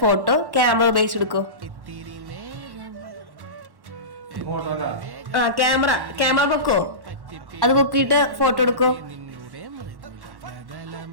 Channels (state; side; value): late; left; 1.1 ms